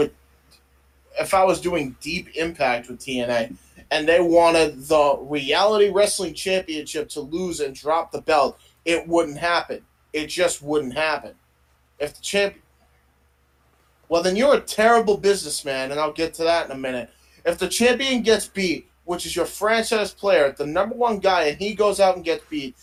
TNA and they wanted the Reality Wrestling Championship to lose and drop the belt, it wouldn't happen. It just wouldn't happen. If the champion... Well, then you're a terrible businessman, and I'll get to that in a minute. If the champion gets beat, which is your franchise player, the number one guy, and he goes out and gets beat,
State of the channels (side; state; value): both; identical; correlation 1.00